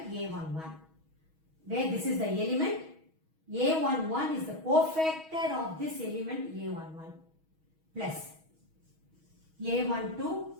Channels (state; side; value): late; left; 6.3 ms